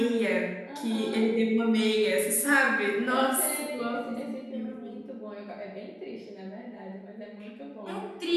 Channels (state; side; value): identical; both; correlation 1.00